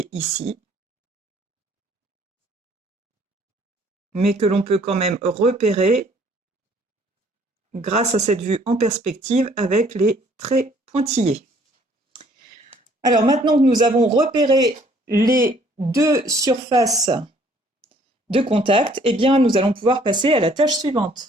ici, mais que l'on peut quand même repérer grâce à cette vue en perspective avec les traits pointillés. Alors maintenant que nous avons repéré les 2 surfaces de contact, eh bien, nous allons pouvoir passer à la tâche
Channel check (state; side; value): normal; both; correlation 0.60